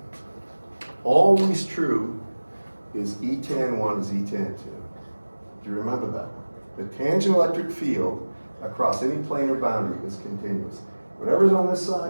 always true, is E tan 1 is E tan 2. Do you remember that? The tangent electric field across any planar boundary is continuous. Whatever's on this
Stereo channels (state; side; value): inverted; both; correlation -1.00